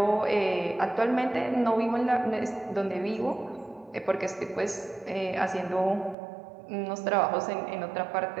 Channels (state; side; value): drops out; left; at 6.2 s